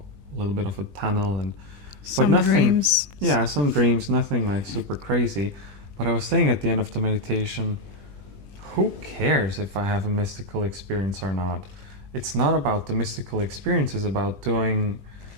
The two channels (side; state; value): left; late; 20 ms